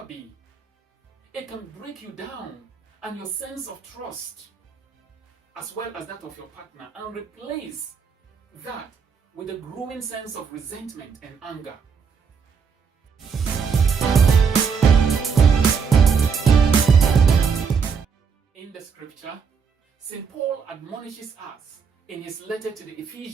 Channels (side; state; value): left; quieter; 6.1 dB